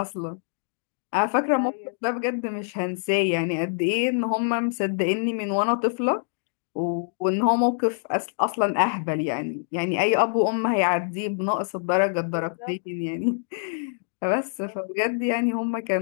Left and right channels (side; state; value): right; silent; digital silence